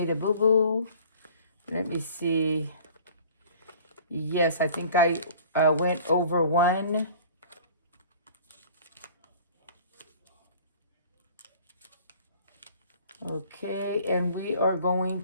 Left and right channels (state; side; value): inverted; both; correlation -0.48